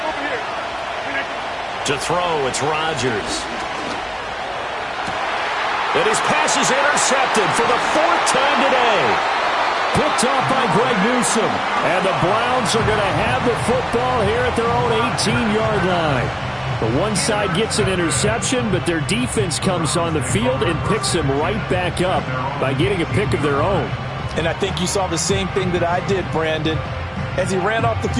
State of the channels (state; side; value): identical; both; correlation 1.00